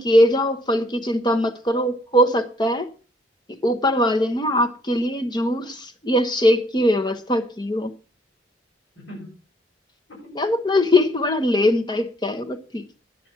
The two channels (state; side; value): normal; both; correlation 0.66